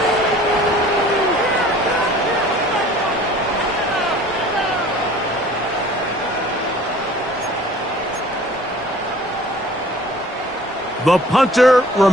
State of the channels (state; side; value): normal; both; correlation 0.49